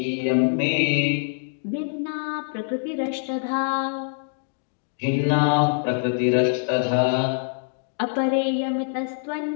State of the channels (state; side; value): silent; right; digital silence